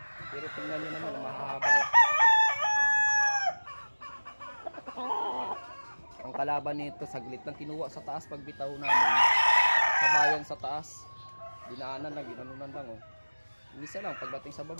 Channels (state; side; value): inverted; both; correlation -1.00